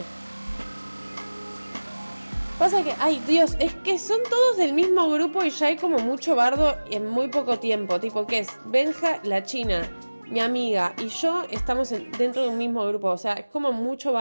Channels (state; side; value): inverted; both; correlation -1.00